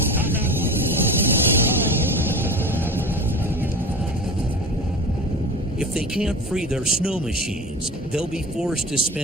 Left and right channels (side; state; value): both; normal; correlation 0.32